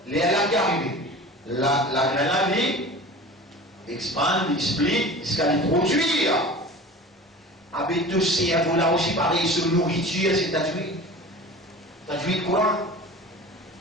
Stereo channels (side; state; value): both; normal; correlation 0.38